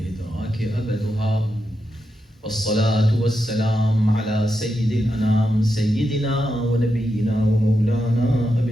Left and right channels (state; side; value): normal; both; correlation 0.86